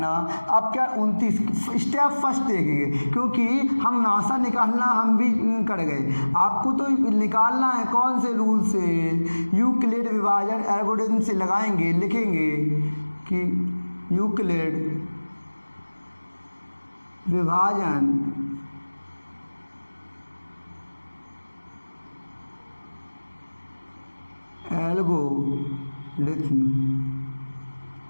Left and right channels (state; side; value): inverted; both; correlation -1.00